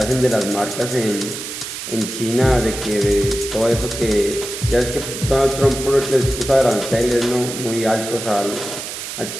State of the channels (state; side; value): noise; right; hiss, 8 dB below the sound